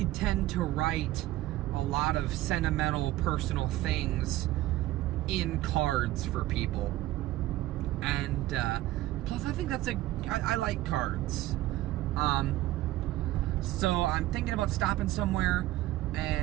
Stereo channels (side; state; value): left; quieter; 16.1 dB